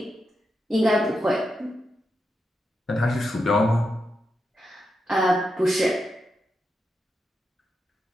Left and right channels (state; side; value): normal; both; correlation 0.86